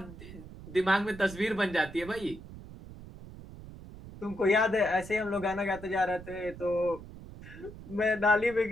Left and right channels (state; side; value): noise; right; rumble, 15 dB below the sound